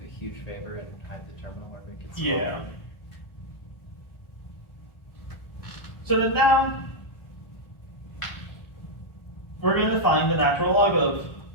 huge favor and hide the terminal or make it Yeah. smaller? So then now, we're going to find the natural log of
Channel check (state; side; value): late; right; 1.4 ms